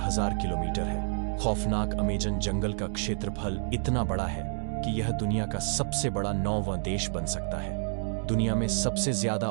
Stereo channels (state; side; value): silent; left; digital silence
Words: किलोमीटर है। खौफनाक अमेजन जंगल का क्षेत्रफल इतना बड़ा है कि यह दुनिया का सबसे बड़ा 9वां देश बन सकता है। दुनिया में सबसे ज्यादा